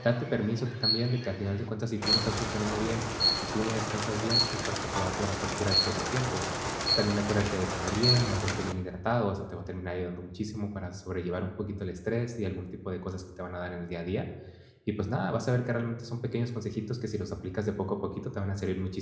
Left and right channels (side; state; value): both; identical; correlation 1.00